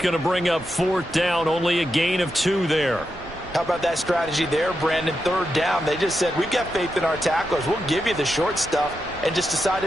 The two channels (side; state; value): right; noise; rumble, 19 dB below the sound